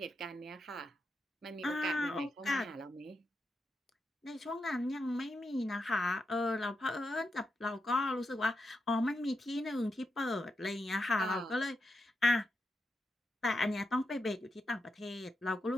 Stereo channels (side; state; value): both; normal; correlation 0.86